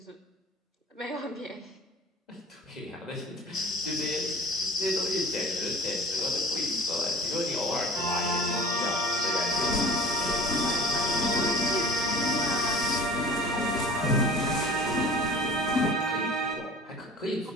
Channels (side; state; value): both; normal; correlation 0.41